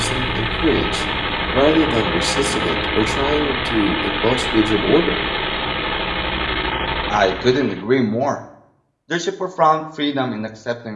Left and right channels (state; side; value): identical; both; correlation 1.00